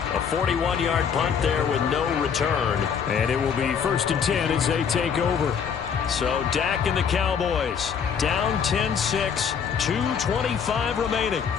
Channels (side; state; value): right; quieter; 7.0 dB